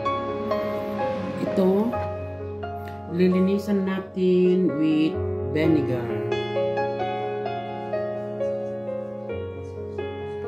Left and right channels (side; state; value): both; identical; correlation 1.00